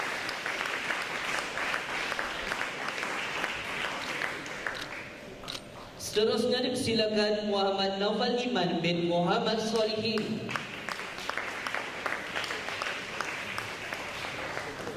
seterusnya dipersilakan Muhammad Naufal Iman bin Muhammad Solihin,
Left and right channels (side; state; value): both; identical; correlation 1.00